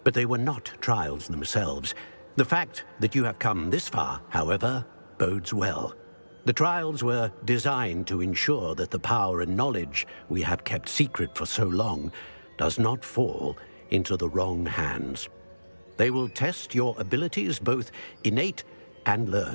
but they were not trials themselves. The fact that you have come this far, however, bodes well. The trials were designed to ensure that the power and knowledge we have kept secret for so long does not fall into the wrong hands. They will test your abilities, both innate and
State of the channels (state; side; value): inverted; both; correlation -1.00